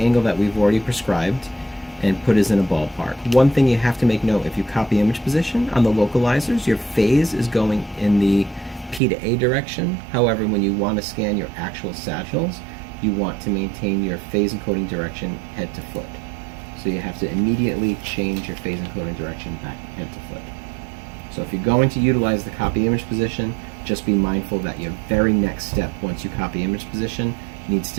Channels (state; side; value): drops out; left; at 9.0 s